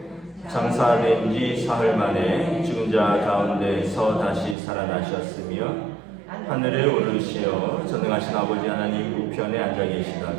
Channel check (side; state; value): left; drops out; at 4.5 s